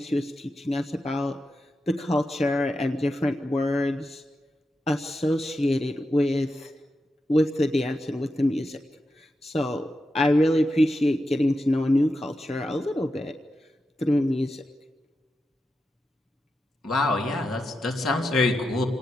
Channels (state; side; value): normal; both; correlation 0.88